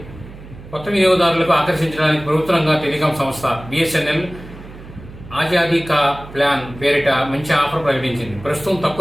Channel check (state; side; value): noise; right; hum, 17 dB below the sound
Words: కొత్త వినియోగదారులకు ఆకర్షించడానికి ప్రభుత్వంగా టెలికాం సంస్థ బిఎస్ఎన్ఎల్ ఆజాదీ కా ప్లాన్ పేరిట మంచి ఆఫర్ ప్రకటించింది. ప్రస్తుతం